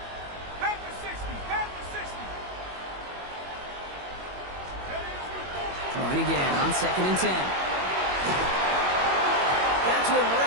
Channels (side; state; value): left; late; 22 ms